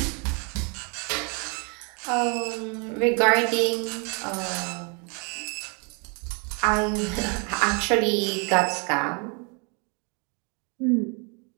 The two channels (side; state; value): left; quieter; 34.5 dB